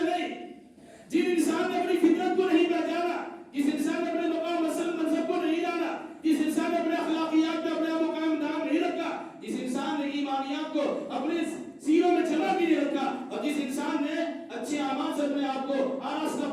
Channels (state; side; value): identical; both; correlation 1.00